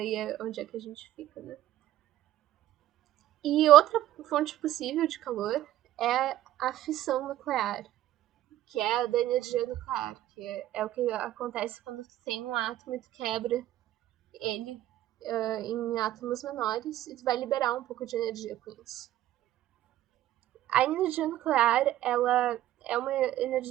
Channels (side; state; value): left; quieter; 13.7 dB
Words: é onde é que a gente fica, né? E outra fonte possível de calor é a fissão nuclear, que é a da energia nuclear, que é o que acontece quando tu tem um átomo e tu quebra ele em átomos menores e tu vai liberar um pouco de energia com isso. A energia nuclear, ela é uma